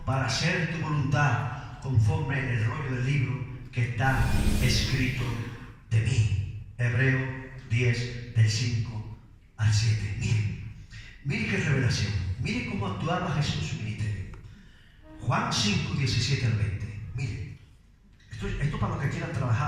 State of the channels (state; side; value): identical; both; correlation 1.00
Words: para hacer tu voluntad conforme en el rollo del libro que está escrito de mí. Hebreo 10, del 5 al 7. Miren qué revelación. Miren cómo actuaba Jesús en su ministerio. Juan 5, 17 al 20. Miren, esto Esto para los que quieran